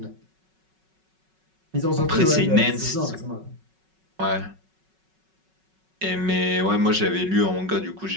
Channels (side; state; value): left; late; 5.4 ms